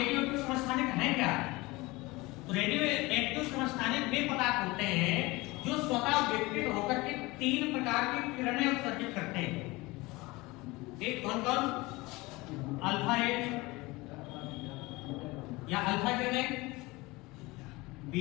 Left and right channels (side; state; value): right; quieter; 22.2 dB